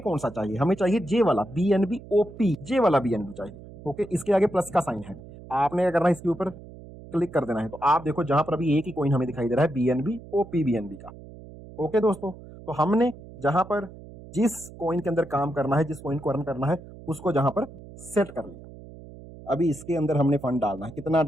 कौन सा चाहिए, हमें चाहिए जे वाला बीएनबी ओपी, जे वाला बीएनबी चाहिए। ओके, इसके आगे प्लस का साइन है, आपने क्या करना है, इसके ऊपर क्लिक कर देना है। तो आप देखो जहां पर अभी एक ही कॉइन हमें दिखाई दे रहा है, बीएनबी ओपी बीएनबी का। ओके दोस्तों, तो हमने जहां पर जिस कॉइन के अंदर काम करना है, जिस कॉइन को अर्न करना है, उसको जहां पर सेट कर लिया। अभी इसके अंदर हमने फंड डालना है, कितना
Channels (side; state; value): right; noise; hum, 17 dB below the sound